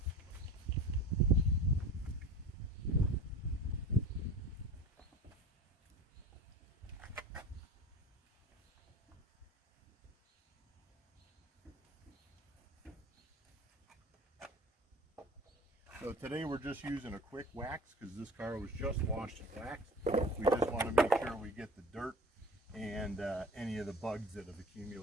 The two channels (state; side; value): normal; both; correlation 0.39